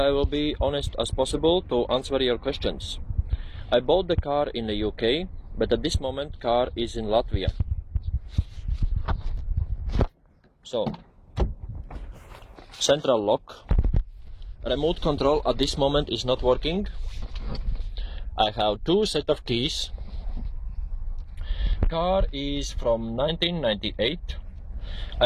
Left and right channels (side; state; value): both; identical; correlation 1.00